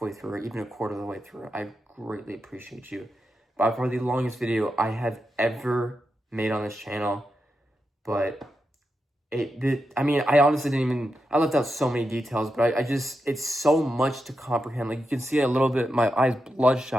through, or even a quarter of the way through, I greatly appreciate you. By far the longest video I have ever made on this channel, but I honestly I left out so many details, but it's so much to comprehend. Like, you can see a little bit, my eyes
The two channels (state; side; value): normal; both; correlation 0.87